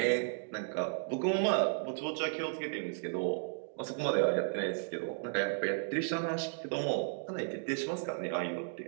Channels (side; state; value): left; silent; digital silence